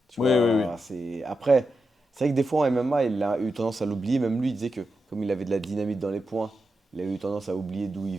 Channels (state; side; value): normal; both; correlation 0.88